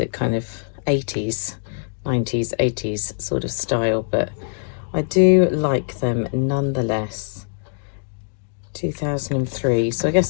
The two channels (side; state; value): right; silent; 64 dB below the other